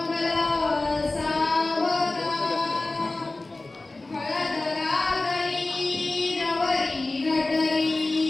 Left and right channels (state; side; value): quieter; right; 3.1 dB